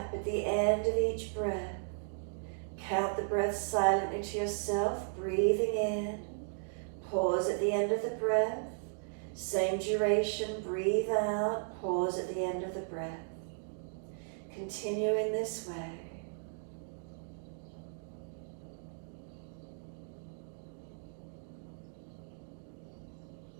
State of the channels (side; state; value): left; silent; digital silence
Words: at the end of each breath. Count the breath silently to yourself, breathing in, pause at the end of the breath. Same duration, breathe out, pause at the end of the breath. Continue in this way.